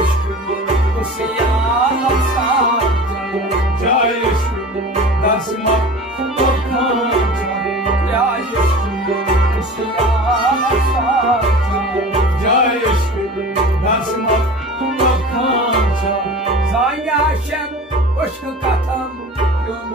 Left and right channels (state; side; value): normal; both; correlation 0.37